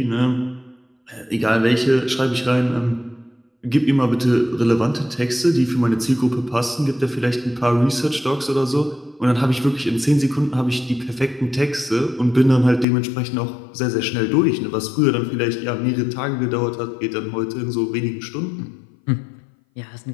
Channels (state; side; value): drops out; right; at 12.9 s